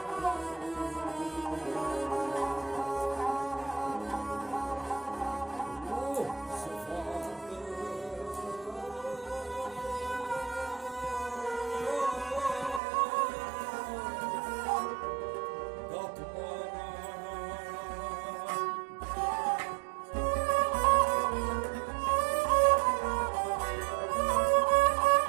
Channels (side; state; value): left; drops out; at 12.8 s